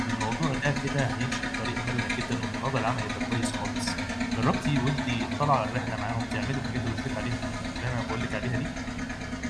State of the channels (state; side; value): identical; both; correlation 1.00